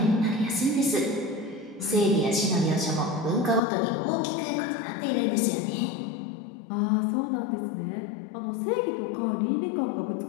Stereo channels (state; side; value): drops out; right; at 3.6 s